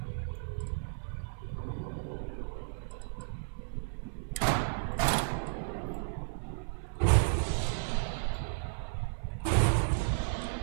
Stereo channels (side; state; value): left; silent; 55 dB below the other